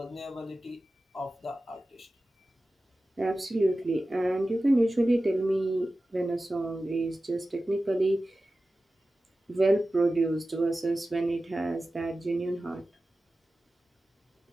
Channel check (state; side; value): normal; both; correlation 0.95